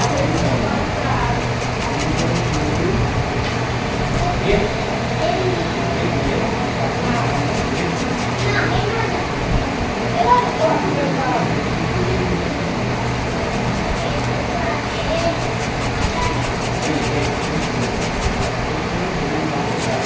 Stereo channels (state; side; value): identical; both; correlation 1.00